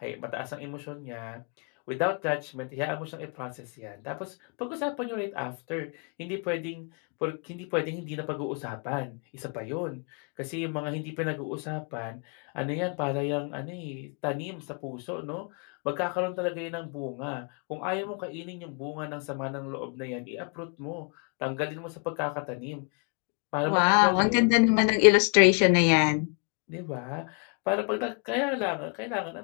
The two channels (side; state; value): right; quieter; 39.4 dB